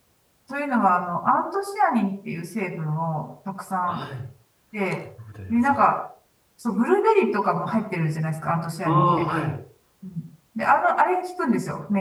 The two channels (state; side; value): identical; both; correlation 1.00